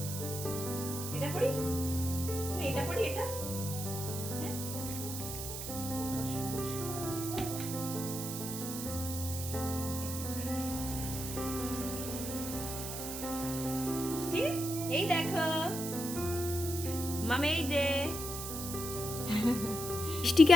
এটা পরি? এটা পরি? এটা হ্যাঁ, মিষ্টি এই দেখো মামা, এই যে মিষ্টিকে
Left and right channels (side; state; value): right; noise; hiss, 6 dB below the sound